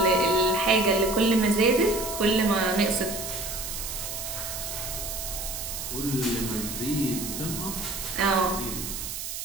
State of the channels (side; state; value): right; noise; hiss, 6 dB below the sound